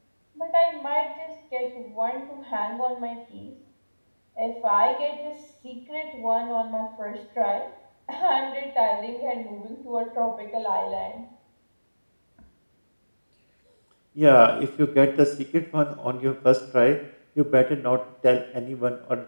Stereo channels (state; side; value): inverted; both; correlation -1.00